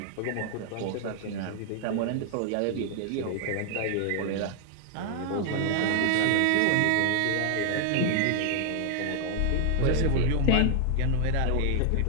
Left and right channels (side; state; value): both; different; correlation 0.00